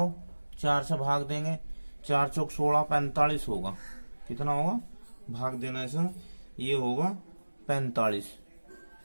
4 से भाग देंगे, 4 चौक 16, 45 होगा। कितना होगा? भाग देना ऐसा, ये होगा 45।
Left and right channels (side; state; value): both; inverted; correlation -1.00